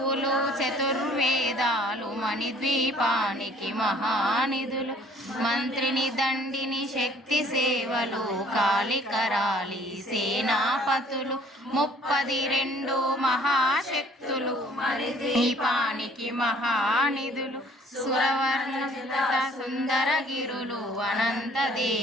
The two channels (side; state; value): both; normal; correlation 0.56